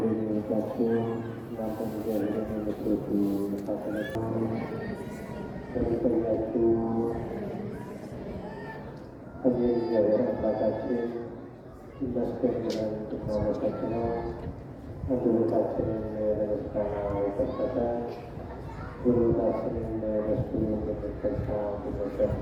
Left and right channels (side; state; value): both; identical; correlation 1.00